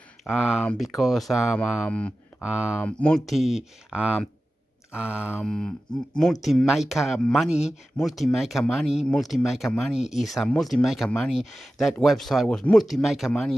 because multi-maker money is a multi-maker money. That website was multi-maker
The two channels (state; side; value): normal; both; correlation 0.94